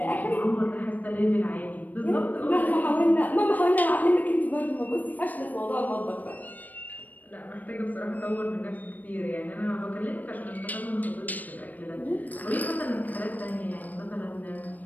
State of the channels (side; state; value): right; late; 0.082 ms